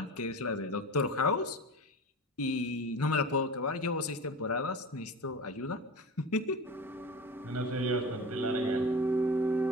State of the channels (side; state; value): both; normal; correlation 0.31